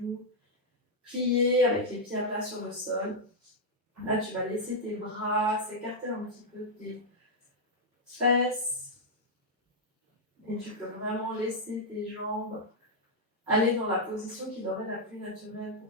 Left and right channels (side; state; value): both; normal; correlation -0.04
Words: pliés avec les pieds à plat sur le sol. Là, tu vas laisser tes bras s'écarter un petit peu de tes fesses. Et tu peux vraiment laisser tes jambes aller dans la position qui leur est la plus naturelle